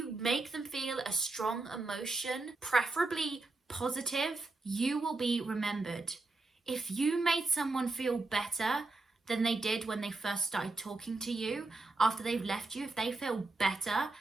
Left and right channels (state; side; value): quieter; left; 3.3 dB